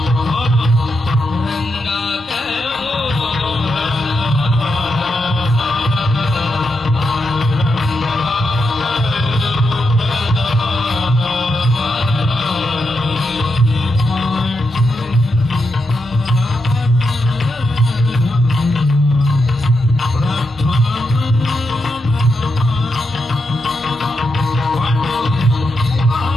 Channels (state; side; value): normal; both; correlation 0.84